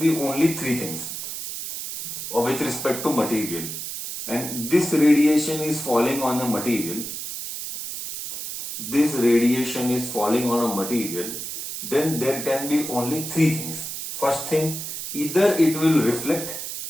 only three things with respect to material. And this radiation is falling on a material. This radiation is falling on a material. Then there can be only three things. First thing, either it will reflect.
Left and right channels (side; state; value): right; noise; hiss, 7 dB below the sound